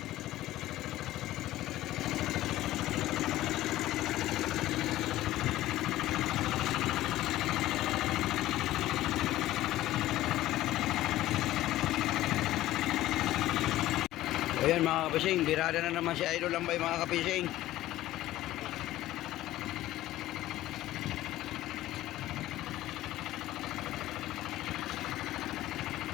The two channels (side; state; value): right; quieter; 15.2 dB